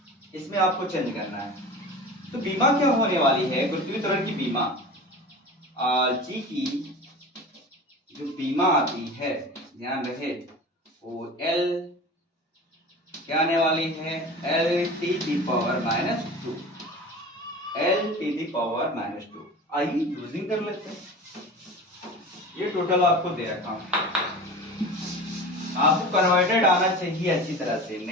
इसमें आपको चेंज करना है। तो बीमा क्या होने वाली है? गुरुत्वीय त्वरण की बीमा, जी की जो बीमा आती है, ध्यान रहे, वो एल क्या आने वाली है? L T the power -2, L T the power -2। आइए यूजिंग कर लेते हैं। ये टोटल आपको दे रखा हूं, आपको कन्वर्टेड आना चाहिए अच्छी तरह से।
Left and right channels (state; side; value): normal; both; correlation 0.34